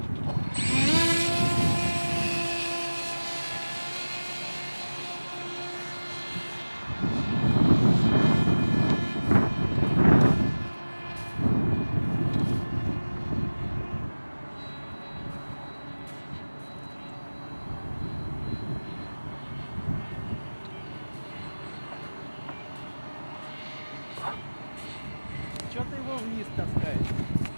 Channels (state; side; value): inverted; both; correlation -1.00